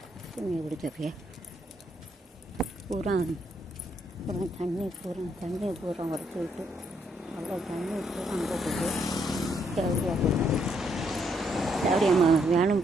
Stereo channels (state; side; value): normal; both; correlation 0.73